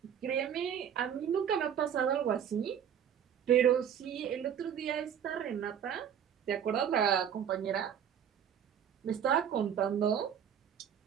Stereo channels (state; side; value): quieter; left; 8.7 dB